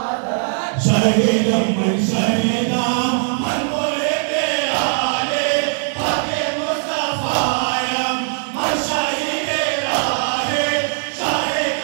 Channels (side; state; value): left; silent; 66 dB below the other